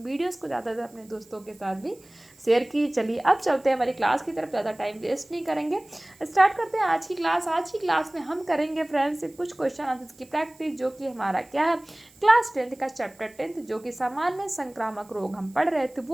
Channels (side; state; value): right; noise; hiss, 27 dB below the sound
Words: वीडियोज़ को ज़्यादा से अपने दोस्तों के साथ भी शेयर कीजिए। चलिए अब चलते हैं हमारी क्लास की तरफ, ज़्यादा टाइम वेस्ट नहीं करेंगे, स्टार्ट करते हैं आज की क्लास। आज की क्लास में हम करेंगे फ्रेंड्स कुछ क्वेश्चन आंसर्स की प्रैक्टिस, जो कि हमारा क्या है, क्लास 10 का चैप्टर 10 जो कि सामान्य संक्रामक रोग हम पढ़ रहे थे,